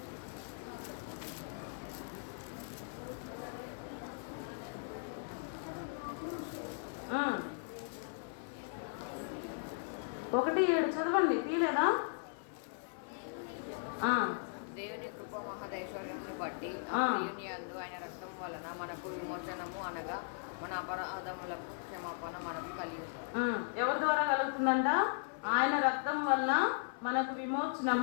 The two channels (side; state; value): right; silent; 53 dB below the other